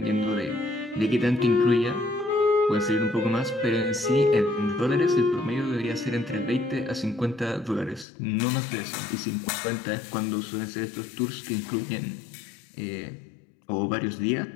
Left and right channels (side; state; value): right; drops out; at 8.1 s